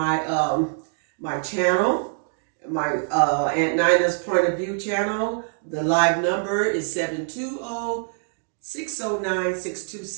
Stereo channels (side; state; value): left; silent; digital silence